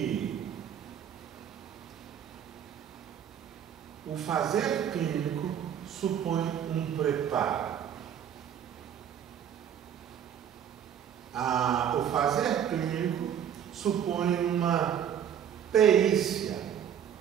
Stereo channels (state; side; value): quieter; left; 9.1 dB